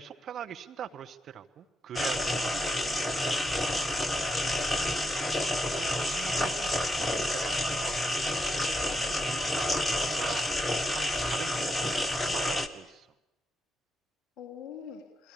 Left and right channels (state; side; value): normal; both; correlation 0.83